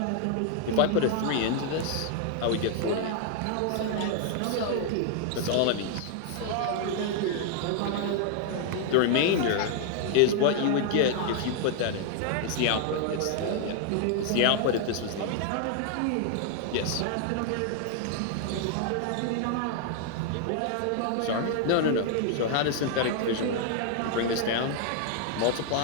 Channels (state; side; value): different; both; correlation 0.00